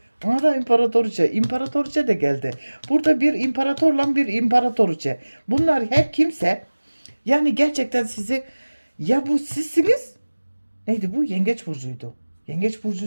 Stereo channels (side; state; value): both; inverted; correlation -1.00